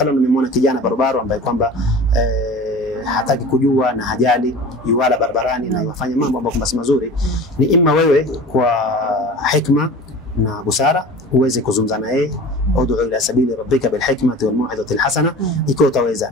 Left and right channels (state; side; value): normal; both; correlation 0.37